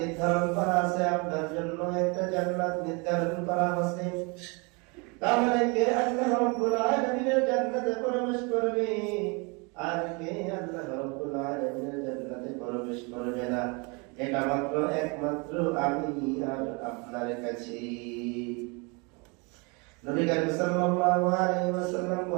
করা আছে, আপনার জন্য একটা জান্নাত নির্ধারণ করা আছে। তাহলে কে আল্লাহ রাব্বুল আলামিনের জান্নাতে প্রবেশ করবে আর কে আল্লাহ রাব্বুল আলামিনের জান্নাতে প্রবেশ করবে না, এটা মাত্র একমাত্র আমি আর আপনার কাছে। নবী করিম সাল্লাল্লাহু আলাইহি ওয়াসাল্লাম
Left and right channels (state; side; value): quieter; left; 30.6 dB